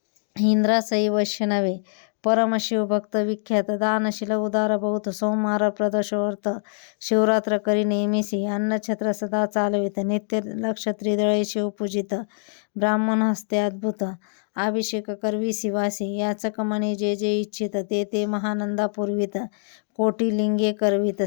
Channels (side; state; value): right; silent; 62 dB below the other